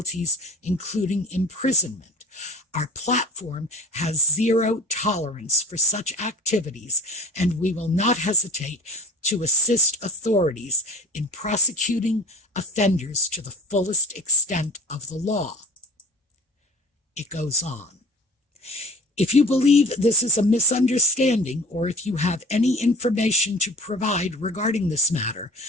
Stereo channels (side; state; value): both; normal; correlation 0.42